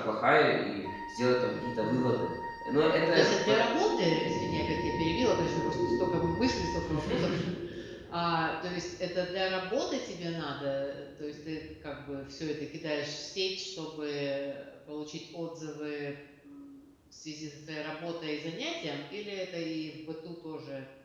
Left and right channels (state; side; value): identical; both; correlation 1.00